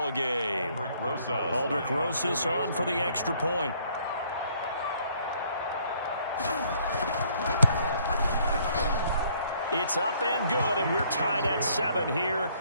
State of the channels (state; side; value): inverted; both; correlation -0.64